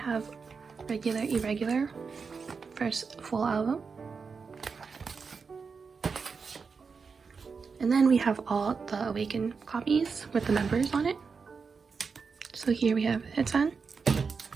Regular Irregular, first full album. And then we have all the Awaken copies with the members on it. So here we have Haechan,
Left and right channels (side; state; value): left; quieter; 5.2 dB